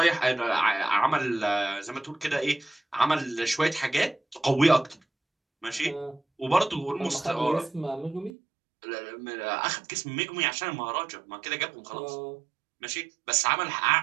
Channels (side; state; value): left; drops out; at 8.3 s